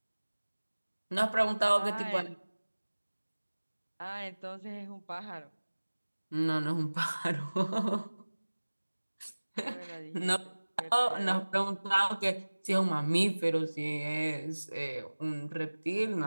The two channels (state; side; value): inverted; both; correlation -1.00